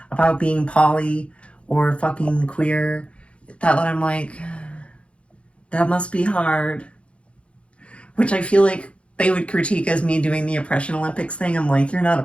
about being poly or fucking queer that I'm like, that must be hard. Which I feel like they would critique as me doing the Oppression Olympics thing. I'm like, you're not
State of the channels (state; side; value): late; right; 0.060 ms